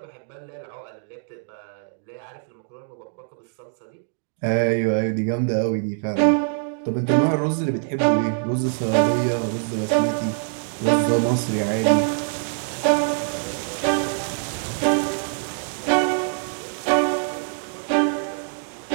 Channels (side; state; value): left; silent; digital silence